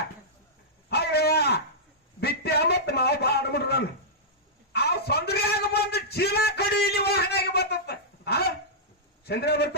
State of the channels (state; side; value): normal; both; correlation -0.12